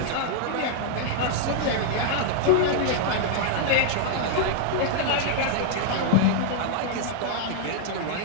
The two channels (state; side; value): different; both; correlation -0.01